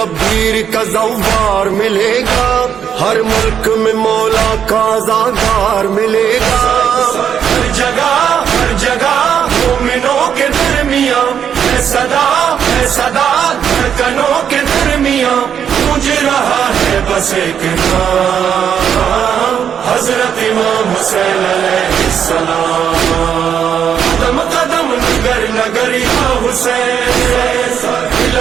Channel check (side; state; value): left; quieter; 8.3 dB